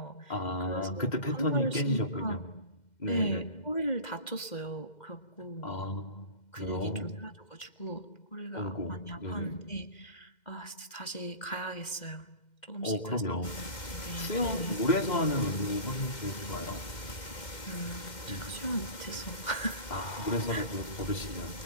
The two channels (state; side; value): late; right; 2.1 ms